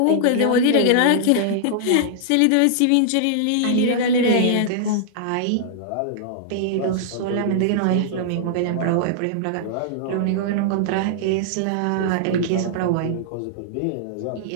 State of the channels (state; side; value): different; both; correlation -0.01